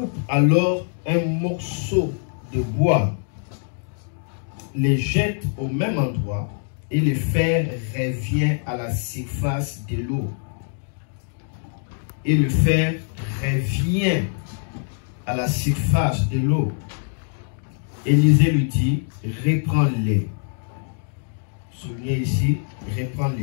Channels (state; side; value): silent; right; digital silence